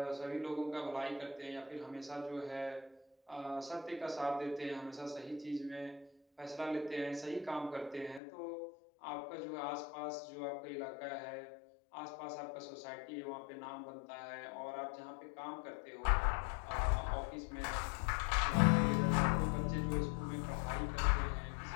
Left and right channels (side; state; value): right; drops out; at 8.2 s